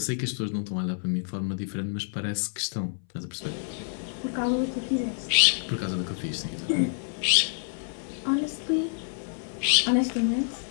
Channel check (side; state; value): right; silent; 59 dB below the other